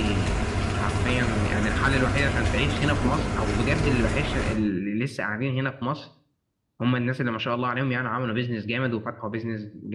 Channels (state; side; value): identical; both; correlation 1.00